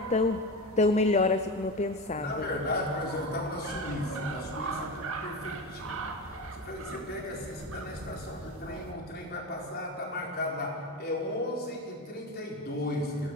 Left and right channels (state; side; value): normal; both; correlation 0.23